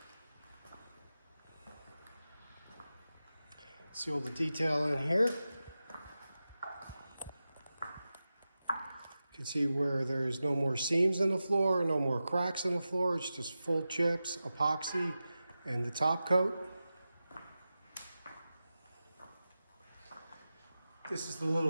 See all the detail in here. You can see where there's no more seams in the floor, no more cracks in the floor. It's just full chips, epoxy, and the top coat. This is the little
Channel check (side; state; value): both; inverted; correlation -0.93